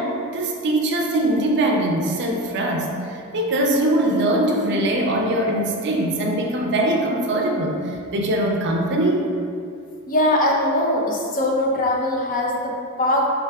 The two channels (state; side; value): normal; both; correlation 0.16